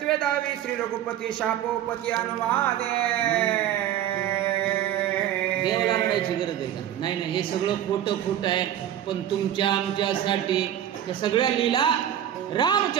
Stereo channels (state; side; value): quieter; left; 11.0 dB